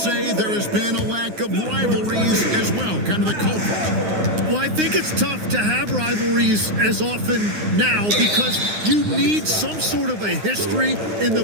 there has been a lack of rivalries as well, kind of the culprit. Well, I think it's tough to have rivalries as often now because you need some sort of a history in the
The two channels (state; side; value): late; left; 9.7 ms